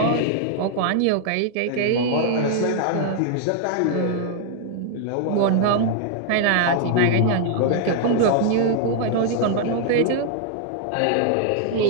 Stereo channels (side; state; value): both; different; correlation -0.01